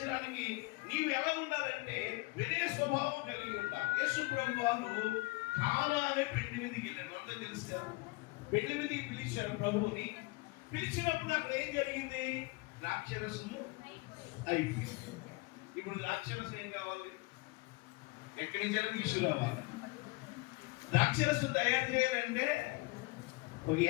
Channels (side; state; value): right; quieter; 24.3 dB